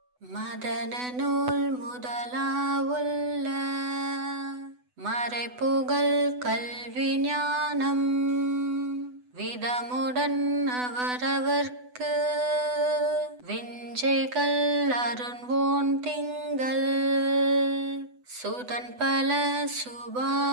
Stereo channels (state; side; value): late; left; 8.0 ms